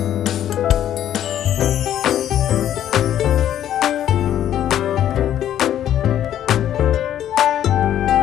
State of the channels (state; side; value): quieter; right; 11.1 dB